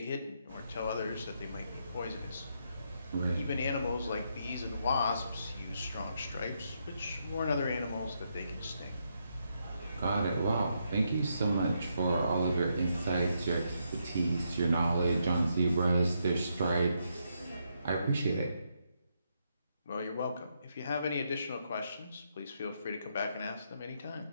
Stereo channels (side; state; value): both; inverted; correlation -0.79